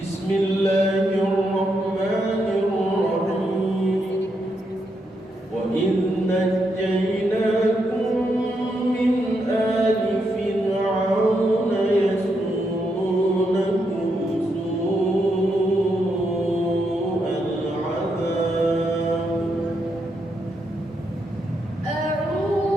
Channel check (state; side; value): normal; both; correlation 0.81